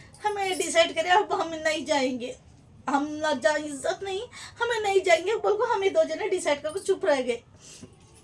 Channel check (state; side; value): identical; both; correlation 1.00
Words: हमें डिसाइड करें अब हम नहीं जाएंगे, हम ना जा, इज्जत नहीं, हमें नहीं जाएंगे बोल को, हमें 2 जने डिसाइड करके चुप रह गए,